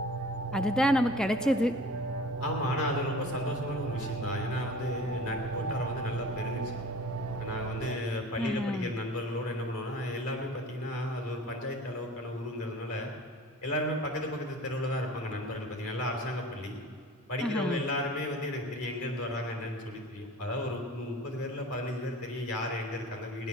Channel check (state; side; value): normal; both; correlation 0.42